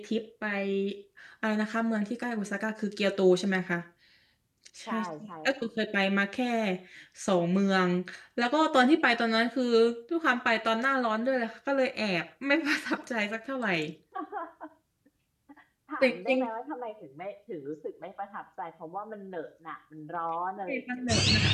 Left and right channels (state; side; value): identical; both; correlation 1.00